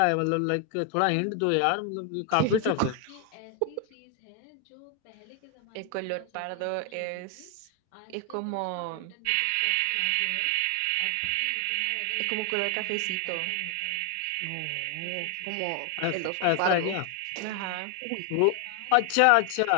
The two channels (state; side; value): different; both; correlation 0.00